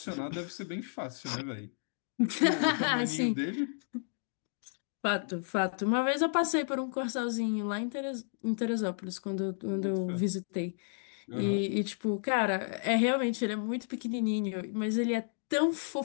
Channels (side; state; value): right; silent; digital silence